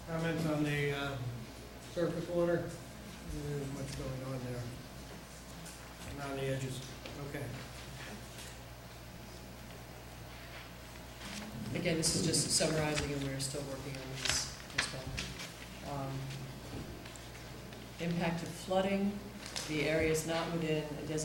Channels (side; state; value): both; identical; correlation 1.00